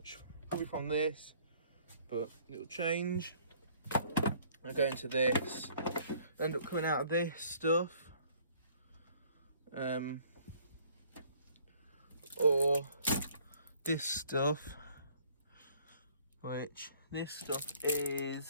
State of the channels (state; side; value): inverted; both; correlation -0.58